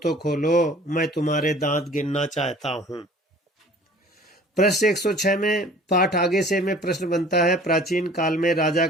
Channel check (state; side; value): normal; both; correlation 0.49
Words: तो खोलो, मैं तुम्हारे दांत गिनना चाहता हूं। प्रश्न 106 में पाठ आगे से में प्रश्न बनता है, प्राचीन काल में राजा